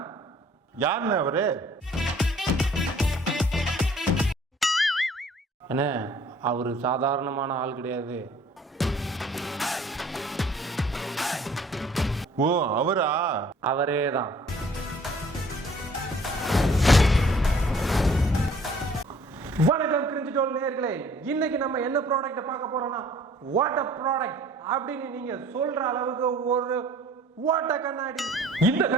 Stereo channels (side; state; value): both; normal; correlation 0.55